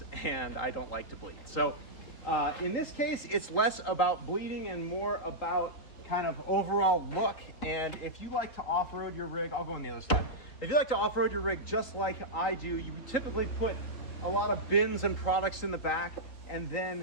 and I don't like to bleed. So in this case, it's less about bleeding and more about kind of overall look. And if you like to off-road your rig, I'll go on the other side. If you like to off-road your rig just like I do, you typically put a lot of bins and products in the back, and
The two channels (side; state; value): right; late; 3.8 ms